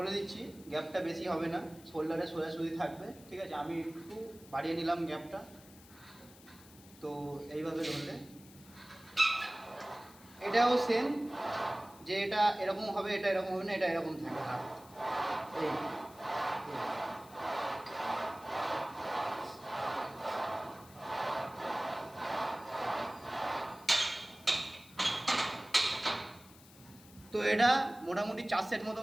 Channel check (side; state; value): left; noise; hiss, 22 dB below the sound